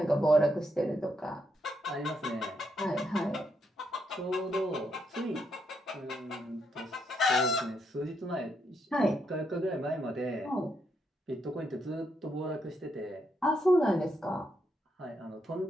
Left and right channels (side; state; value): both; normal; correlation 0.78